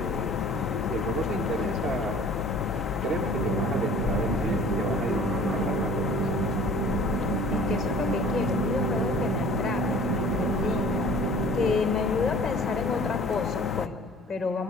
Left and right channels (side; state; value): both; normal; correlation 0.48